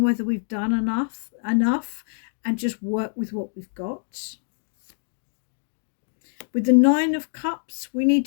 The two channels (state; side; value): silent; right; digital silence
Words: whether we've done enough and just work with what we've got. With the 9 of Cups, we need